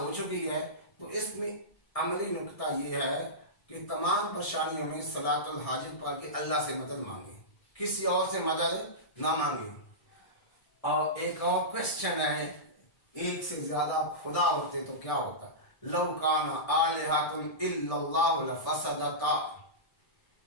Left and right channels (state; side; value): late; right; 1.6 ms